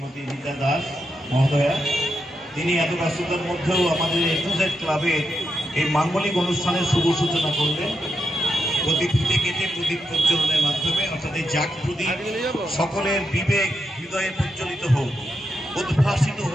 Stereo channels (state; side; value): normal; both; correlation 0.84